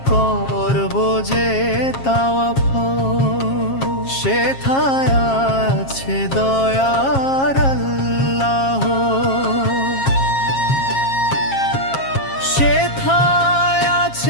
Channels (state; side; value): late; right; 7.4 ms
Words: করব যে তাওয়াফ। সেথায় আছে দয়ার আল্লাহ, সেথায়